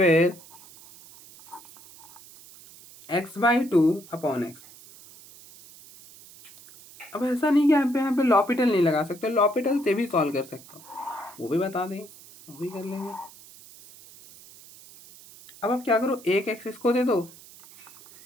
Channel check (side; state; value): right; noise; hiss, 21 dB below the sound